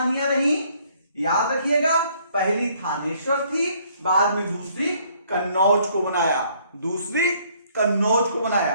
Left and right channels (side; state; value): both; inverted; correlation -0.63